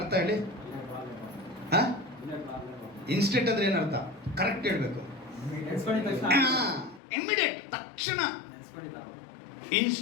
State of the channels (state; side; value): drops out; right; at 7.0 s